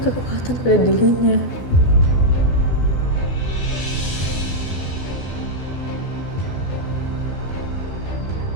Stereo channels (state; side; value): late; right; 12 ms